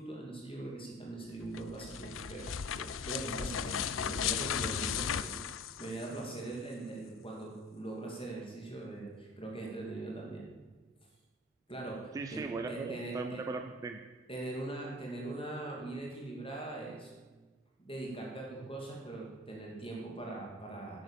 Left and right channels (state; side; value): normal; both; correlation 0.42